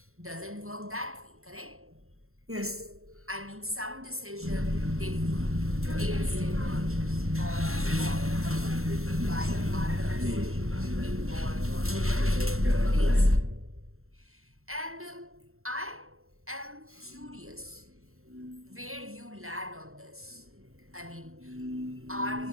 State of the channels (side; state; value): left; late; 0.62 ms